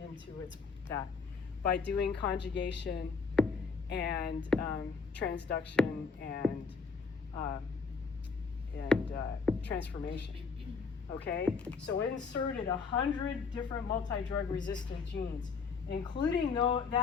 that by doing conjugation and transduction and transformation. Okay, so it inserted 100 different multi-drug resistant genes, including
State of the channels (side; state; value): right; quieter; 5.0 dB